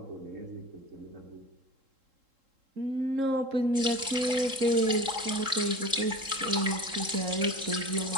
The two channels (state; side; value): late; left; 3.7 ms